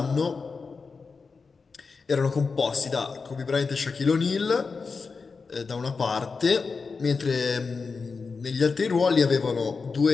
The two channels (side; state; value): right; quieter; 4.7 dB